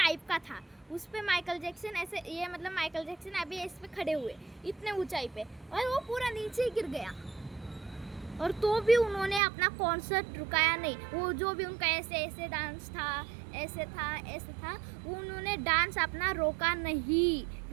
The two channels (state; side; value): drops out; left; at 9.4 s